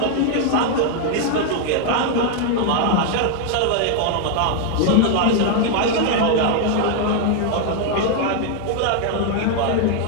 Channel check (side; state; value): both; different; correlation 0.00